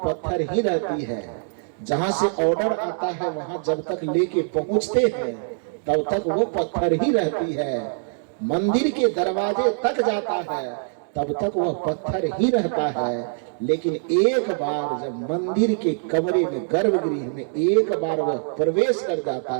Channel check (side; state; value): left; silent; digital silence